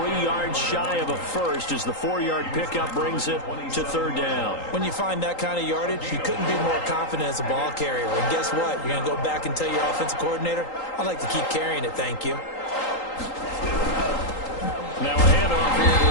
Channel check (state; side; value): late; right; 3.8 ms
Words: yards shy of a first as the 4-yard pickup brings it to 3rd down. When you find that kind of yardage, you couldn't be more confident as a ball carrier. And guess what? You're going to go back and tell your offensive coordinator, I'd like to keep carrying it, thank you. Now a handoff here to